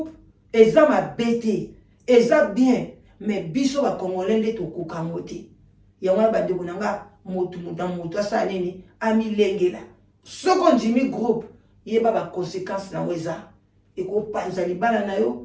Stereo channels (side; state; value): both; identical; correlation 1.00